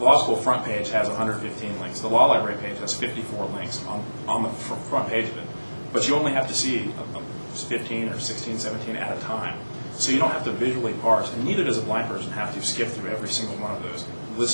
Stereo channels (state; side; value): inverted; both; correlation -1.00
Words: school front page has 115 links. The law library page has 54 links on the front page of it. But you only have to see 15 or 16, 17 at a time. So you don't have to visually parse, and neither does a blind person have to skip through every single one of those,